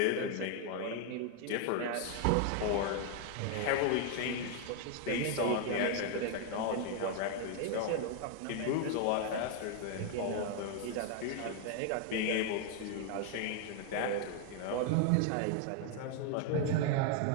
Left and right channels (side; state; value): both; different; correlation 0.00